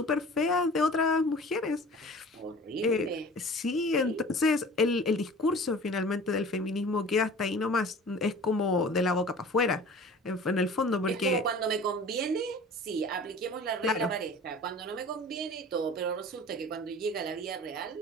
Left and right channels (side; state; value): both; normal; correlation 0.43